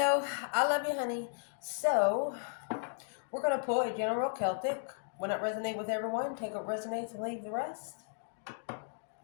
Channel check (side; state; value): right; silent; digital silence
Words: I love you, honey. So, we're going to pull a general Celtic. When it resonates with everyone, take what resonates and leave the rest.